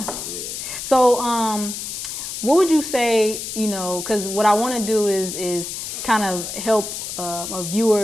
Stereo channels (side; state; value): left; noise; hiss, 6 dB below the sound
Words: So, what would you say? Because what I want to do is kind of help a